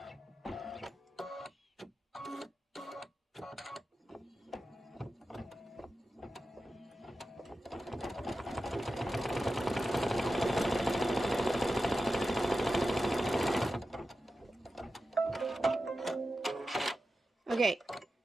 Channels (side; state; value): both; normal; correlation 0.92